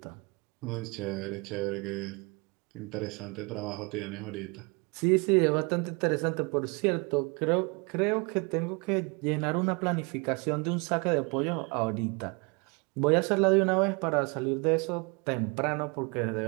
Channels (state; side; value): quieter; left; 30.1 dB